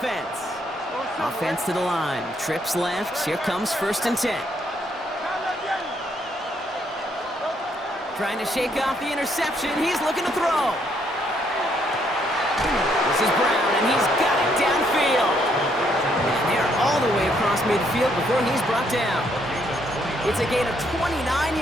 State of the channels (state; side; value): normal; both; correlation 0.72